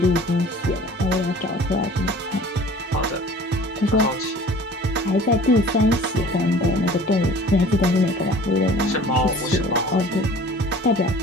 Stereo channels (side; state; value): both; normal; correlation 0.46